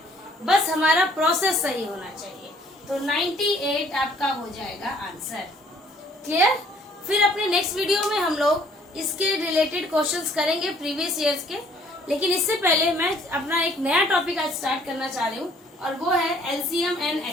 बस हमारा प्रोसेस सही होना चाहिए। तो 98 आपका हो जाएगा आंसर। क्लियर। फिर अपने नेक्स्ट वीडियो में हम लोग इसके रिलेटेड क्वेश्चंस करेंगे प्रीवियस ईयर्स के, लेकिन इससे पहले मैं अपना एक नया टॉपिक आज स्टार्ट करना चाह रही हूँ और वो है एलसीएम एंड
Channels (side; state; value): both; normal; correlation 0.59